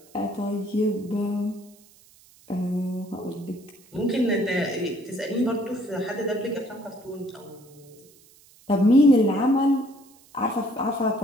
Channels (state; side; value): noise; right; hiss, 27 dB below the sound